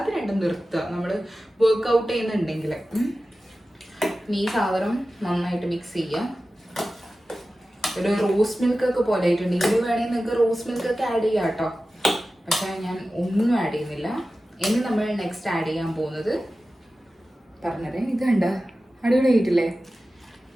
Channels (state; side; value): normal; both; correlation 0.95